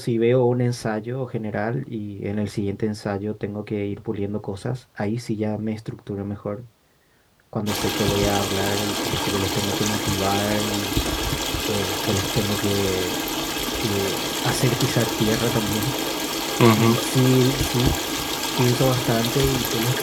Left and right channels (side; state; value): both; identical; correlation 1.00